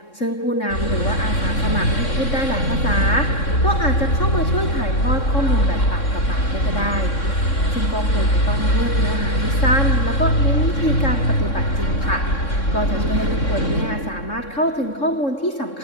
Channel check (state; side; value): late; right; 3.6 ms